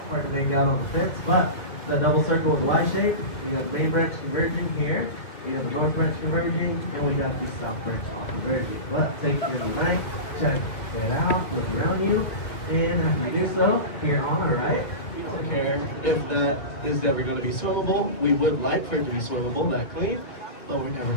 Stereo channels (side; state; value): right; late; 2.7 ms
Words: Hard to make out on the fence, but that double circle with the Y shape, we got the main branch converging here, we got the north branch converging, and we got the south branch off converging. But take your night, check it out, look around you, and if you do so, here on the right, we don't care if that is ever going to be swimmable. We would like for it to be swimmable, that clean, but we're never